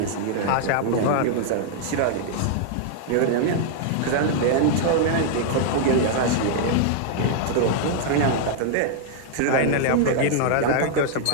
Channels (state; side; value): different; both; correlation -0.01